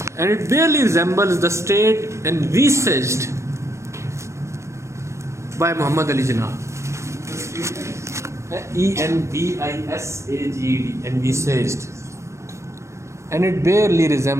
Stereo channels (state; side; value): late; left; 0.14 ms